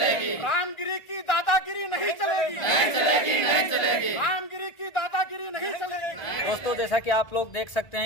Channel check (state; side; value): late; right; 1.5 ms